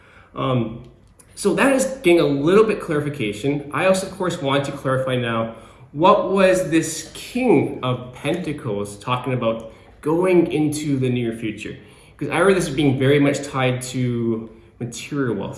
So that is getting a little bit clarification. I also, of course, want to clarify now, what was this King of Pentacles talking about going into the near future? Because I read this as being very much tied to material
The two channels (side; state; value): both; identical; correlation 1.00